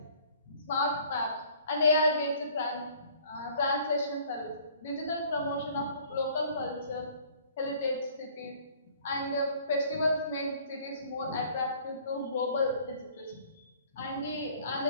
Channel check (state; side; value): inverted; both; correlation -0.54